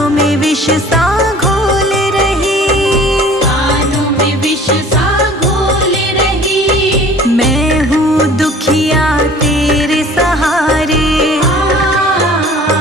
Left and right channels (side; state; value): both; normal; correlation 0.48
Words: में विष सा घोल रही। कानों में विष सा घोल रही। मैं हूँ दुखिया तेरे सहारे,